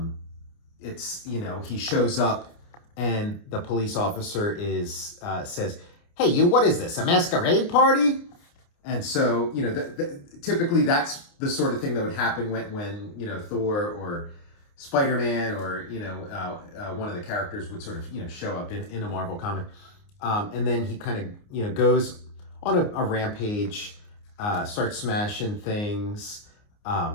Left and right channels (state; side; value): late; right; 29 ms